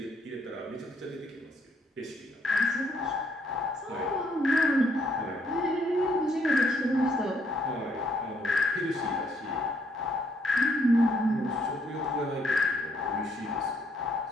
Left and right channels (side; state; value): both; normal; correlation 0.70